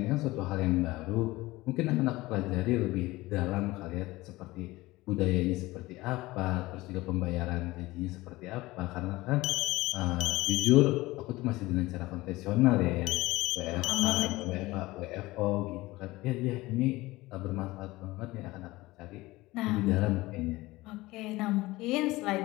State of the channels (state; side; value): quieter; right; 19.6 dB